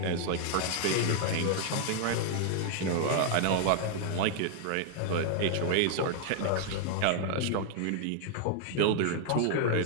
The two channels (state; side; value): different; both; correlation 0.00